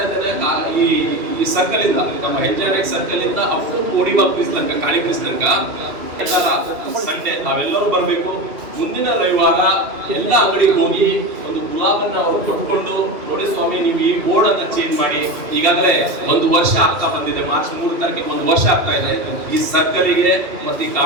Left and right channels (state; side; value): late; left; 2.8 ms